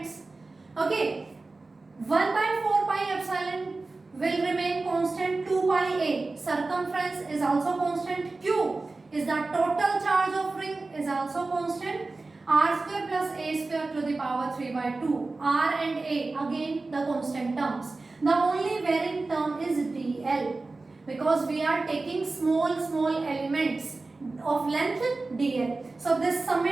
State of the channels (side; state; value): left; quieter; 3.5 dB